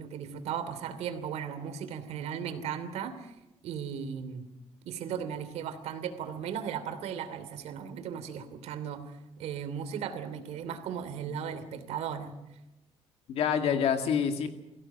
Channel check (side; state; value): both; normal; correlation 0.32